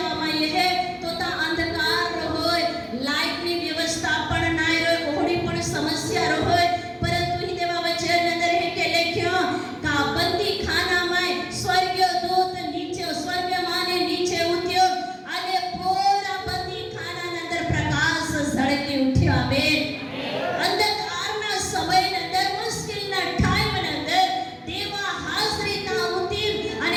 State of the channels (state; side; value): identical; both; correlation 1.00